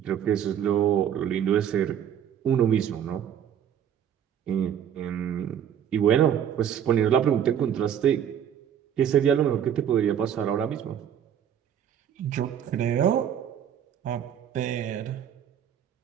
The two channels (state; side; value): quieter; left; 9.3 dB